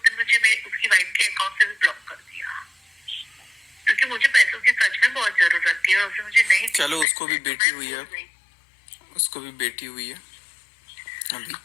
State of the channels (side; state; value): right; drops out; at 7.1 s